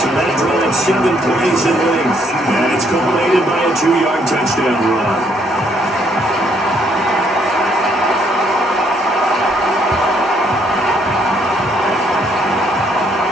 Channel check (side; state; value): both; normal; correlation 0.69